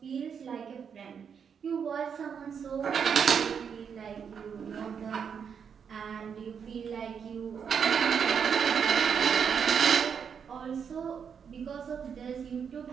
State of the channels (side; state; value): left; quieter; 7.0 dB